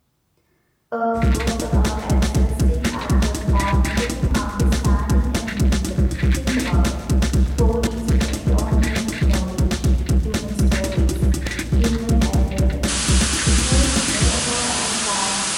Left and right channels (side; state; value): both; identical; correlation 1.00